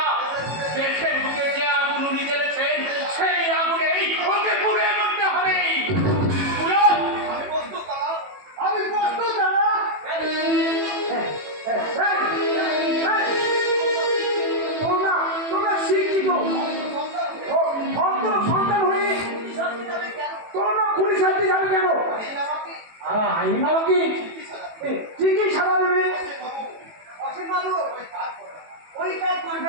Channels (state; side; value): late; left; 18 ms